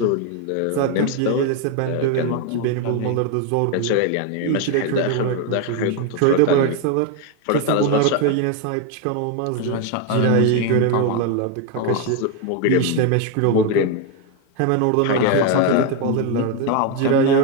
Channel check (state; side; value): different; both; correlation 0.01